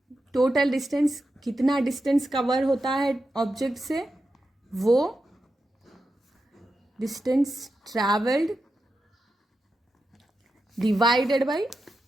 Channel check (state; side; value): normal; both; correlation 0.89